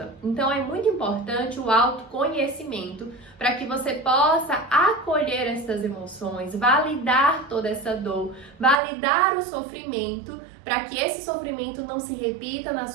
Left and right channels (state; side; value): drops out; left; at 8.8 s